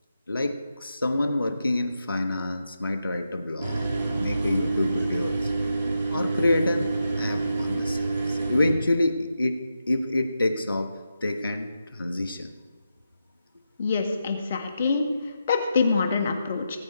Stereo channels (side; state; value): both; inverted; correlation -0.87